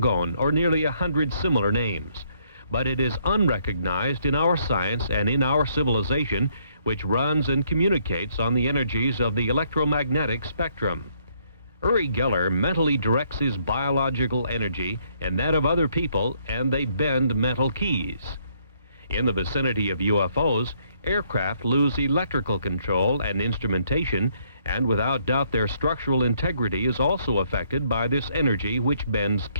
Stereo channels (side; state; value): both; inverted; correlation -0.69